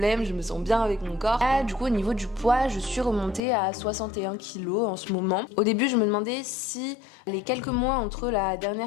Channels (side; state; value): right; drops out; at 3.4 s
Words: je me sens bien avec mon corps. Là, du coup, au niveau du poids, je suis remontée à 61 kilos en ce moment. Au début, je me demandais si les quelques mois entre la